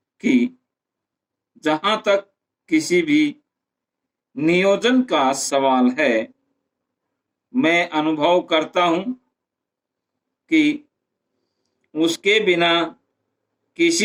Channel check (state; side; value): identical; both; correlation 1.00